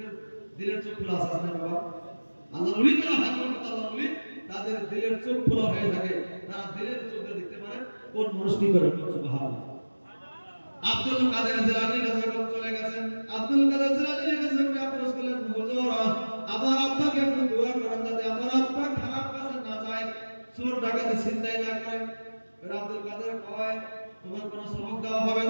দিলের চোখ খোলা আছে না বাবা? আল্লাহ ওলি যারা হয় আল্লাহ ওলি তাদের দিলের চোখ খোলা হয়ে থাকে, তারা দিলের চোখে দেখতে পারে কোন মানুষ কি করে। সুবহানাল্লাহ। আব্দুল কাদের জিলানীর কাছে চলে গেছেন। আব্দুল কাদের জিলানীর কাছে আফসোস করলেন, হুজুর আমার আব্বাকে একটু দোয়া করেন যাতে আমার আব্বা খারাপ কাজে না যায়, চোর ডাকাতি চিন্তাই না করে। আব্দুল কাদের কয়, তোমার কোনো সবক দেওয়া হবে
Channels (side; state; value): both; inverted; correlation -1.00